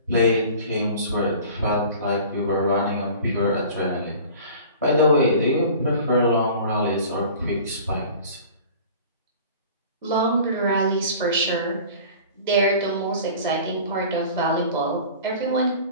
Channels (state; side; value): inverted; both; correlation -0.43